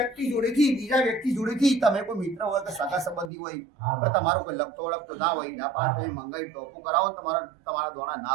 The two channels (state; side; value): drops out; left; at 3.3 s